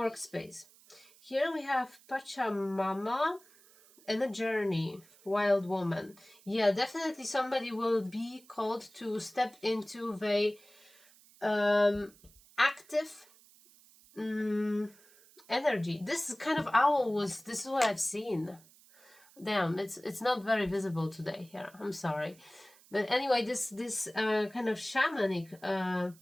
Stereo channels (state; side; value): noise; right; hiss, 26 dB below the sound